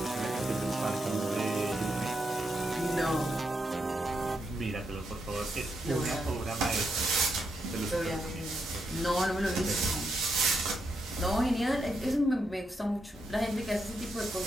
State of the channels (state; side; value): normal; both; correlation 0.81